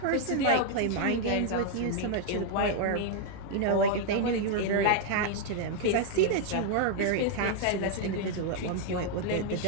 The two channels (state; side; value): different; both; correlation 0.00